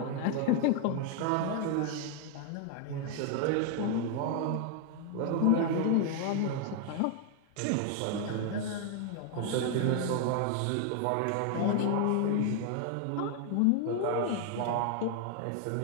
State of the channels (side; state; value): both; different; correlation 0.00